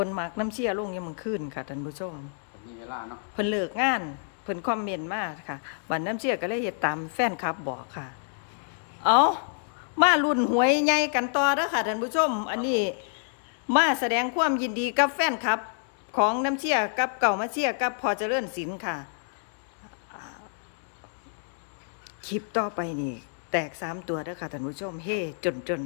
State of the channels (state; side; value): silent; right; digital silence